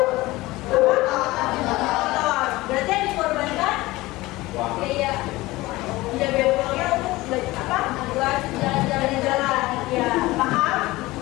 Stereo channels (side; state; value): right; quieter; 19.5 dB